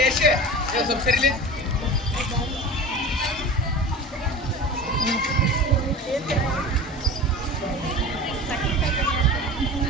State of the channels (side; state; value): both; normal; correlation 0.34